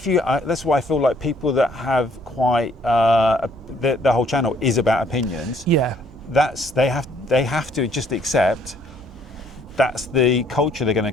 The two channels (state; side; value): normal; both; correlation 0.64